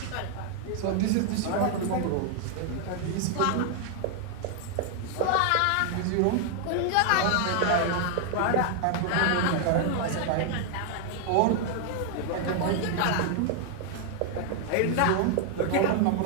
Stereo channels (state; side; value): different; both; correlation 0.00